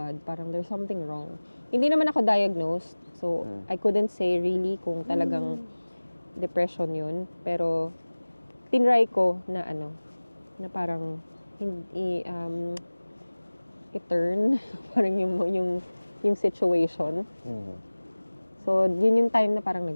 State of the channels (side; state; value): both; inverted; correlation -1.00